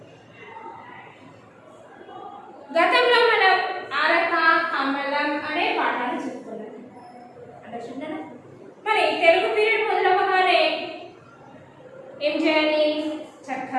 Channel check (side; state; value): both; identical; correlation 1.00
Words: గతంలో మనం అరక కమలం అనే పాఠాలు చెప్పుకున్నాం. అండర్స్టాండ్? మరి తెలుగు పీరియడ్ మొదలవగానే ఏం చేయాలి?